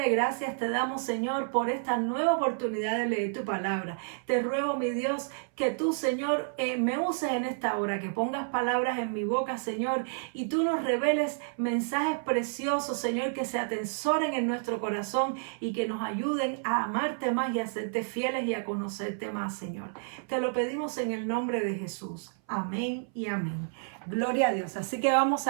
gracias te damos, Señor, por esta nueva oportunidad de leer tu palabra. Te ruego, mi Dios, que tú, Señor, me uses en esta hora, que pongas palabras en mi boca, Señor, y tú nos reveles mensajes preciosos, Señor, que se atesoren en nuestro corazón y que nos ayuden a amarte más y a serte fieles y a conocerte más, Señor. Te lo pedimos en el nombre de Jesús. Amén y amén. Gloria a Dios. Así que vamos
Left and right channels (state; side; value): silent; left; 58 dB below the other